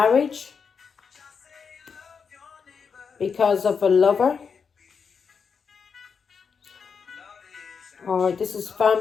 because of a lover. Or this is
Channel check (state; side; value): quieter; right; 6.0 dB